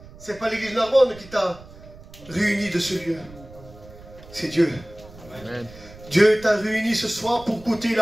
c'est pas l'église Narbonne qui t'a réuni de ce lieu. C'est Dieu. Amen. Dieu t'a réuni ce soir pour écouter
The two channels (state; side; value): noise; right; rumble, 19 dB below the sound